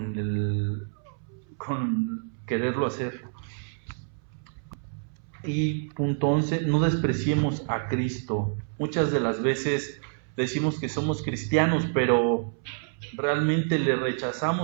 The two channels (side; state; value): left; silent; 60 dB below the other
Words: quererlo hacer. Y punto 11, no despreciemos a Cristo. Muchas de las veces decimos que somos cristianos, pero realmente le